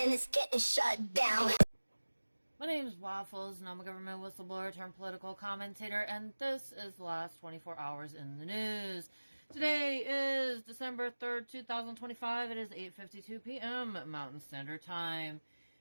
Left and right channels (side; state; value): both; inverted; correlation -1.00